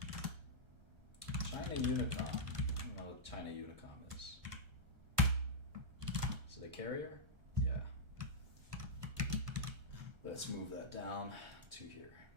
China Unicom. I don't know what China Unicom is. Is it a carrier? Yeah. Let's move that down to here.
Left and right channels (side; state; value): left; late; 1.3 ms